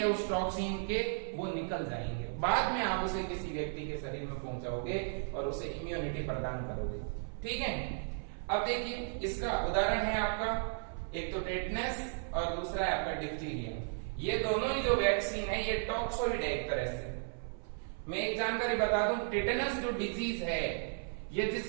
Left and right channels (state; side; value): silent; left; 54 dB below the other